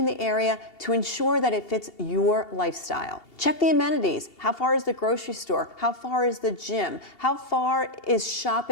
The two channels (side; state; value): right; late; 2.8 ms